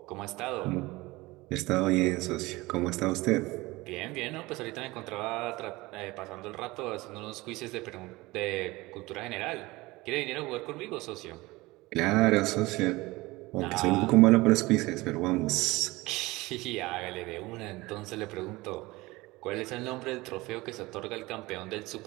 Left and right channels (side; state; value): left; quieter; 21.1 dB